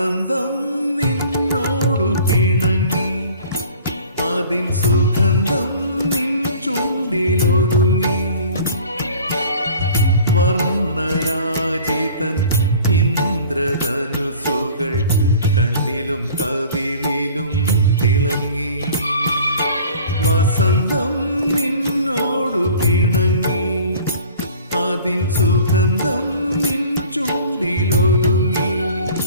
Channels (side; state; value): both; inverted; correlation -0.47